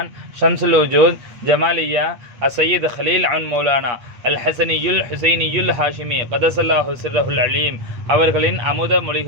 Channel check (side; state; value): left; late; 8.4 ms